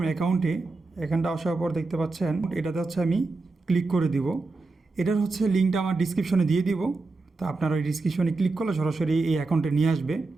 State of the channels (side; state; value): left; quieter; 3.6 dB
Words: অ্যাকাউন্টে। এখানটা আসার পর দেখতে পাচ্ছেন এটাতে হচ্ছে আমি ক্লিক করে দিব। এটার হচ্ছে লিঙ্কটা আমার ডিসক্রিপশনে দিয়ে দিব। তো আপনার ওই ডিসক্রিপশনে ক্লিক করলে সরাসরি এই অ্যাকাউন্টে নিয়ে আসবে।